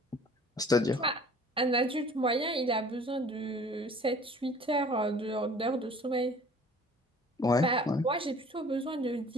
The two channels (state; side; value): normal; both; correlation 0.50